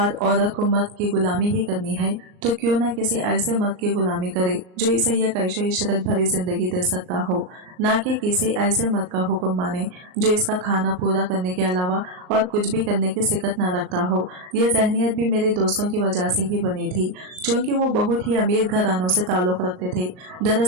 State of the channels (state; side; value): late; left; 38 ms